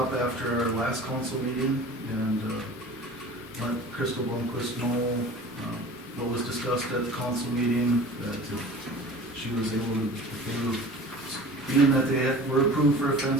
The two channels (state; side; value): normal; both; correlation 0.40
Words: after our last council meeting and let Crystal Blomquist know what was discussed at the council meeting, that if she was able to, being that they were approved for a